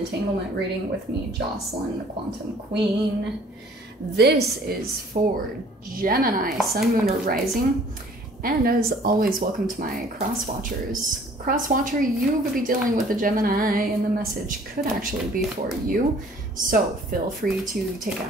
reading with me, Jocelyn, the Quantum Queen. This is for Gemini, Sun, Moon, or Rising. And as always, welcome to my cross watchers. Cross watcher, you could be dealing with a Gemini and the message could actually be for you. So feel free to take it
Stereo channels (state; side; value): normal; both; correlation 0.54